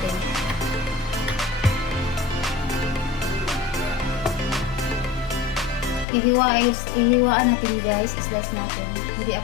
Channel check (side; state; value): right; drops out; at 6.1 s